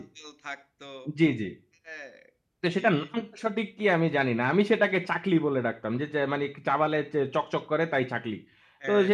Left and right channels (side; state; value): both; identical; correlation 1.00